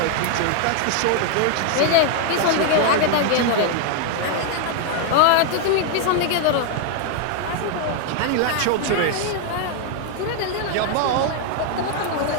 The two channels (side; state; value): both; different; correlation 0.00